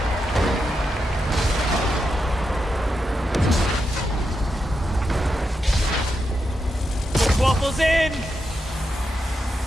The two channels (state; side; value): normal; both; correlation 0.86